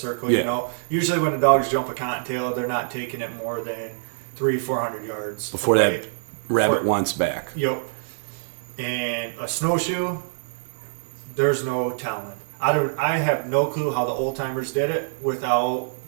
Yeah. You know, usually when the dogs jump a cottontail, they're not taking it more than 300-400 yards before away. that rabbit wants back. Yep. And a snowshoe, there's no telling. I have no clue how the old timers did it without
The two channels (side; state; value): left; silent; 60 dB below the other